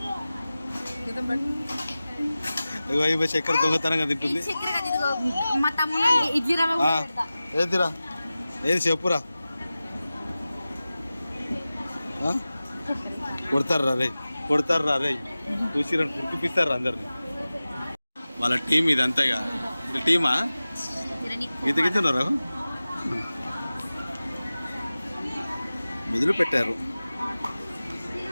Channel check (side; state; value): both; inverted; correlation -0.96